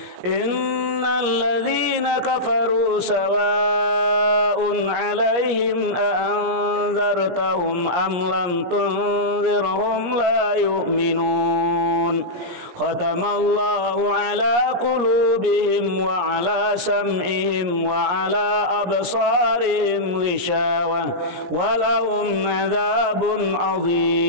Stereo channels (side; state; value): left; late; 17 ms